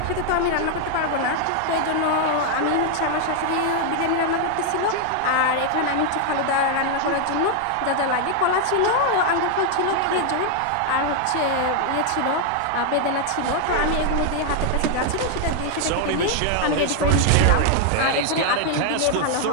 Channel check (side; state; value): both; different; correlation 0.00